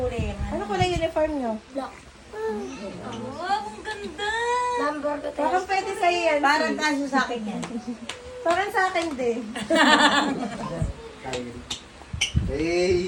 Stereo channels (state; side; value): identical; both; correlation 1.00